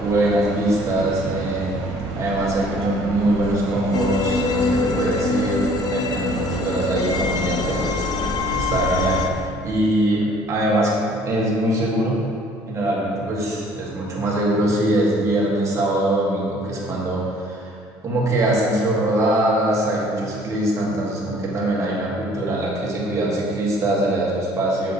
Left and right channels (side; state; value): both; normal; correlation 0.56